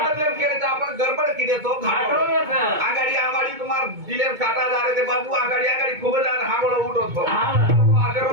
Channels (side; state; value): left; late; 2.2 ms